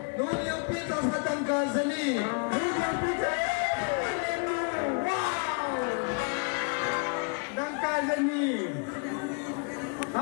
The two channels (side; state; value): right; quieter; 36.8 dB